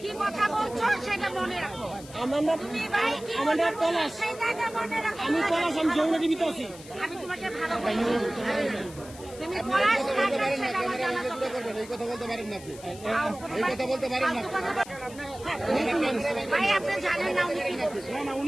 কি কথা বলছো সেটা মনে রাখো। তুমি ভাই কি আমাদের পলাশ, সেটাকে মনে রাখো। আমি পলাশ, আমি যমুনা টিভিতে আছি। আমি তোমাকে ভালো বলছি। তুমি পলাশ কাকা সেটা আমার জানা দরকার। এই কথা বলতে পারেন না আপনি, এই কথা বলতে পারেন না। ভাই আপনি জানেন না উনি কি বলছেন? না না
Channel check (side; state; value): left; noise; hiss, 18 dB below the sound